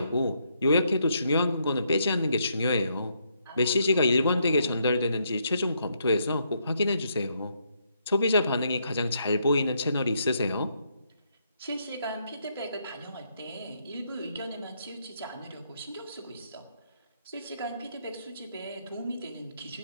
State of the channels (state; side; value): inverted; both; correlation -0.75